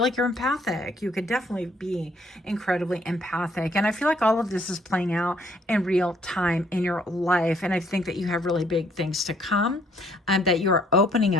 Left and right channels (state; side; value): normal; both; correlation 0.65